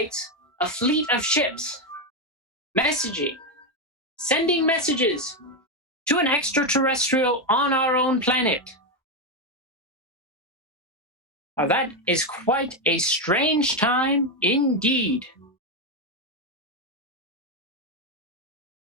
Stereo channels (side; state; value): both; normal; correlation 0.07